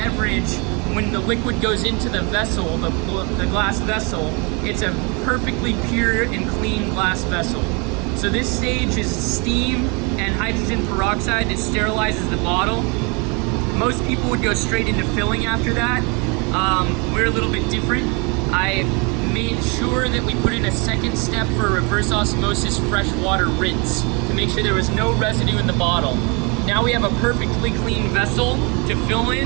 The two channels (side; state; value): left; quieter; 31.2 dB